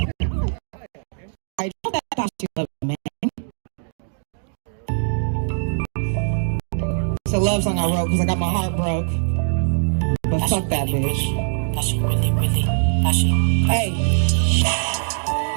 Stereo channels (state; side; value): silent; left; digital silence